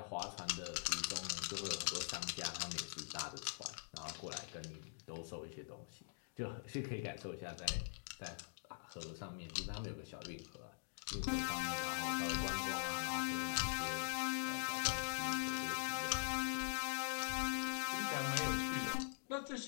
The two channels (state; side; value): silent; right; digital silence